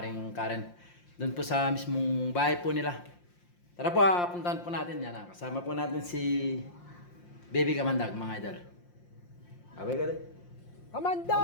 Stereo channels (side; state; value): right; late; 5.7 ms